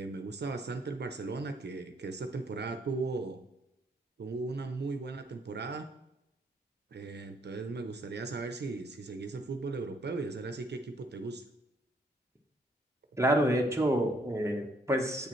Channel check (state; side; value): normal; both; correlation 0.68